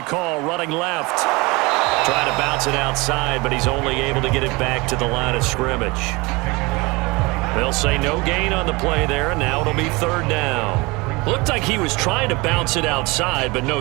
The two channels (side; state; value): left; quieter; 24.7 dB